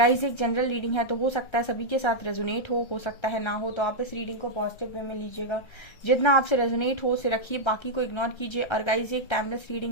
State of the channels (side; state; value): right; late; 1.3 ms